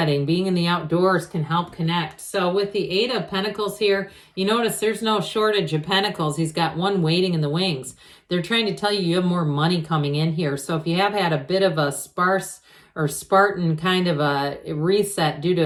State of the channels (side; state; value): both; identical; correlation 1.00